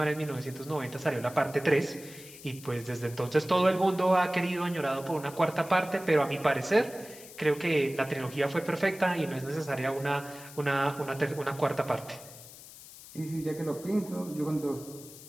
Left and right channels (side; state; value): left; noise; hiss, 17 dB below the sound